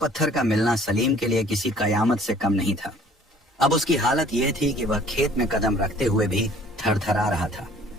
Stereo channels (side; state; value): both; normal; correlation 0.54